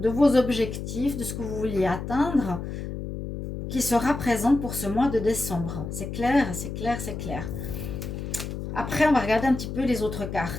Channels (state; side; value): noise; left; hum, 6 dB below the sound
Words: vos objectifs, de ce que vous vouliez atteindre, qui sera présente pour ce mois de décembre. C'est clair, c'est clair, c'est clair. Après, on va regarder un petit peu les autres